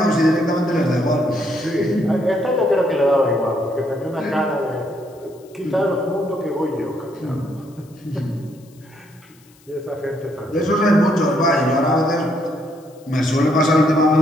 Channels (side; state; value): left; noise; hiss, 29 dB below the sound